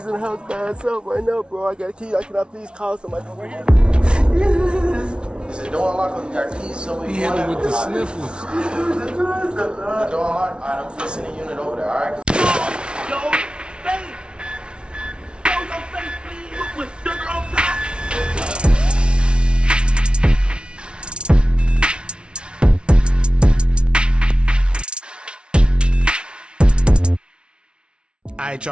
in the house by himself right now, bro. I got a key. Can I please call somebody? Is the door unlocked or you got keys? So we hit him with the sniffles. The door unlocked? Alright, I'm gonna send a unit over there, alright? Yo, face! Yo, your face, please! With sugar on top! Alright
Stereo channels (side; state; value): left; late; 0.057 ms